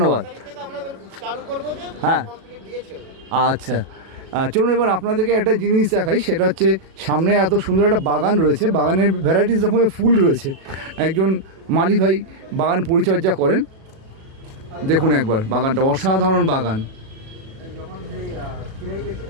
তারিখ থেকে আমরা চালু করব যে হ্যাঁ, কমপ্লিট দিয়েছে। আচ্ছা, চলুন এবার আপনাদেরকে একটা জিনিস দেখাই। সেটা হচ্ছে সামনে এত সুন্দর একটা বাগান রয়েছে, বাগানের ভ্যারাইটিস রকমের ফুল রয়েছে। একজন মালি ভাই বাগান পরিচর্যা করেন। দেখুন একবার বাগানটা, অসাধারণ বাগান।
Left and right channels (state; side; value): late; left; 37 ms